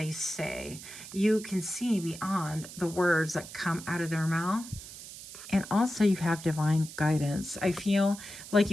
say. You can see beyond the words that come out of their mouth. And also you have divine guidance. I feel like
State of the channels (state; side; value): noise; right; hiss, 14 dB below the sound